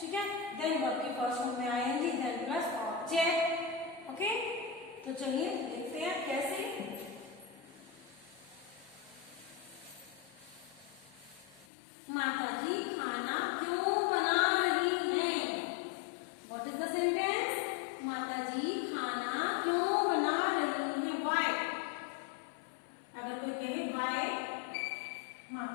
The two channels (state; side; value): drops out; right; at 11.7 s